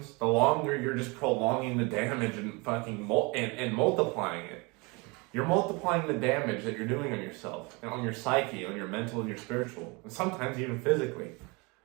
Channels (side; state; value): left; quieter; 27.9 dB